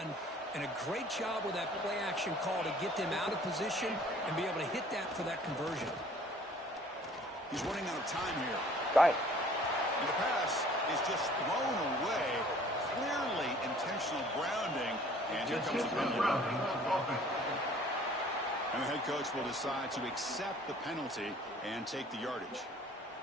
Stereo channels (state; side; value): normal; both; correlation 0.53